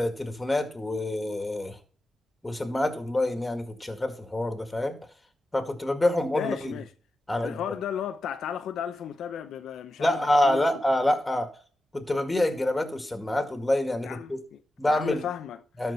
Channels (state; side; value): normal; both; correlation 0.91